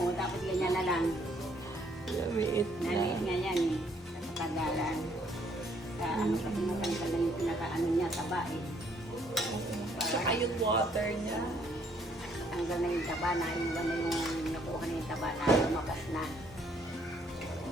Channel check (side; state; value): both; normal; correlation 0.66